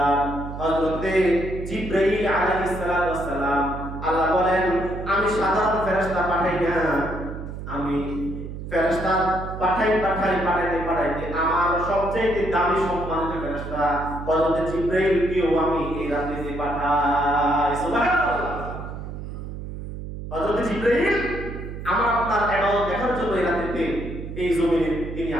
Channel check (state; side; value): noise; right; hum, 9 dB below the sound